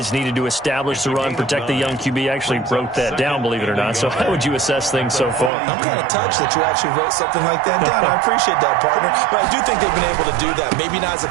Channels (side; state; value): left; drops out; at 5.5 s